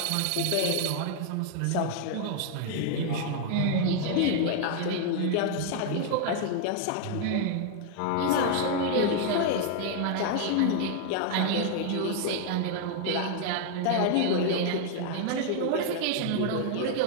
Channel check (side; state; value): both; different; correlation 0.00